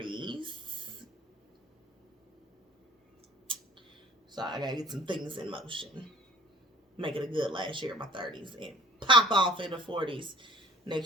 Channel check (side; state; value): both; normal; correlation 0.50